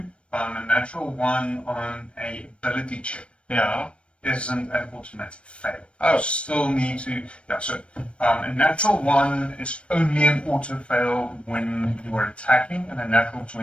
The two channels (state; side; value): late; right; 0.059 ms